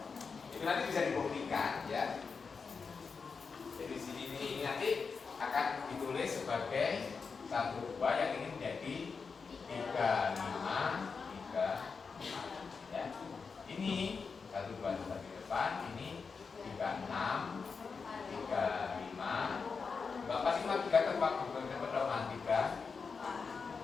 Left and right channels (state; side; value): quieter; right; 5.2 dB